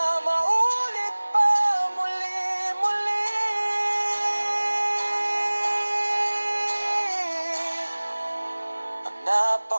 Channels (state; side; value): inverted; both; correlation -1.00